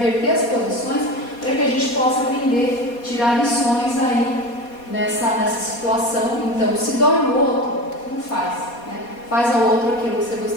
as posições para que a gente possa aprender, tirar lições aí nessa situação. Então, se dói no outro, não faz, né? Faz ao outro aquilo que você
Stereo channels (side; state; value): right; late; 4.2 ms